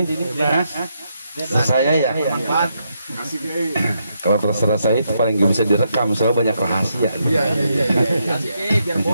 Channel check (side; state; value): both; inverted; correlation -0.80